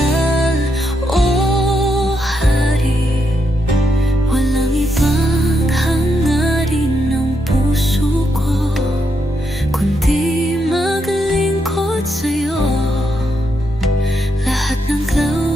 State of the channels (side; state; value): both; normal; correlation 0.81